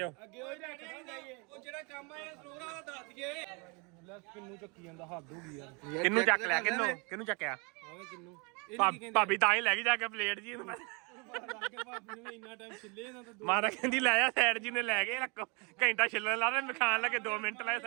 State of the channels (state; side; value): quieter; left; 31.4 dB